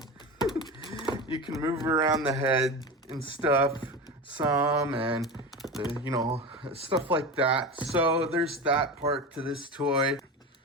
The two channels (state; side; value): normal; both; correlation 0.26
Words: You can move around the head and stuff some, and you know, stuff like that. So there's that part to this toy.